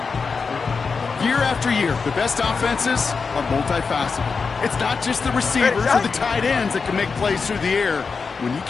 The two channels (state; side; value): quieter; right; 5.0 dB